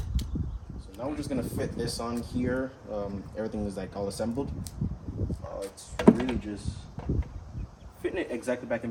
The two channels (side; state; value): both; identical; correlation 1.00